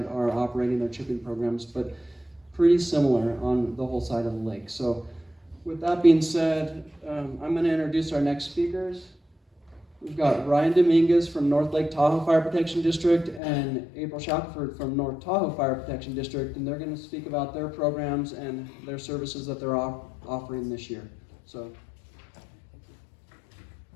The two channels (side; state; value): right; drops out; at 13.4 s